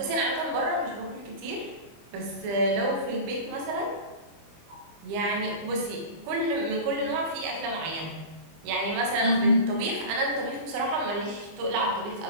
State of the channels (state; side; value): late; left; 25 ms